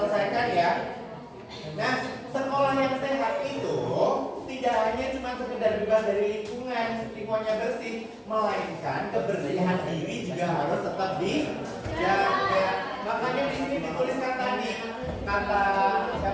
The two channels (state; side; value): identical; both; correlation 1.00